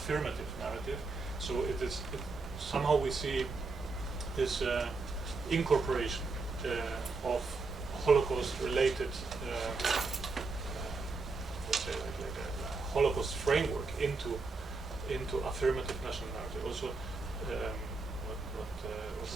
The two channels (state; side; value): quieter; left; 3.9 dB